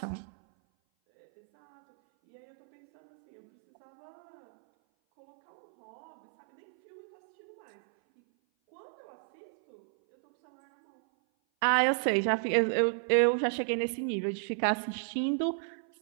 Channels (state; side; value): silent; left; 56 dB below the other